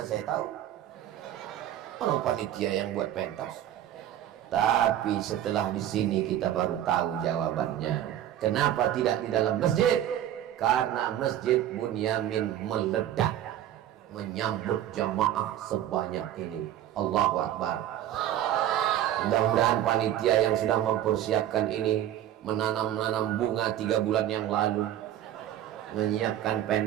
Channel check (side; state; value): left; quieter; 11.8 dB